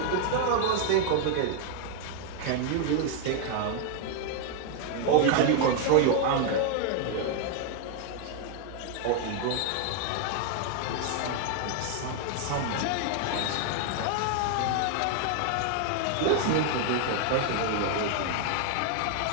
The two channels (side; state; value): both; different; correlation 0.00